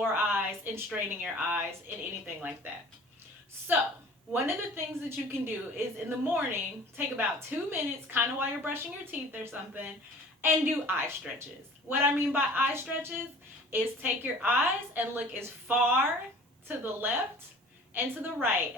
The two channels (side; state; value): both; normal; correlation 0.46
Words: eyes and straining your eyes and anything like that. So, one of the things that you can do is in the morning, take about 2 minutes, kind of while you're brushing your teeth or something, and do eye stretches. What I mean by eye stretches is take your eyes and look as far to the left and to the right